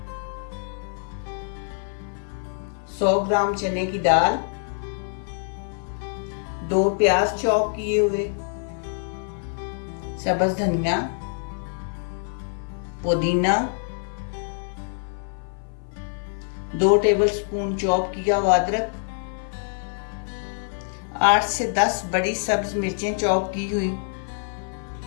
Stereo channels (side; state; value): right; silent; 57 dB below the other